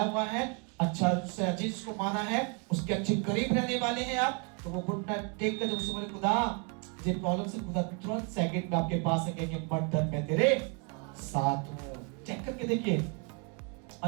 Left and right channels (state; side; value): quieter; left; 35.1 dB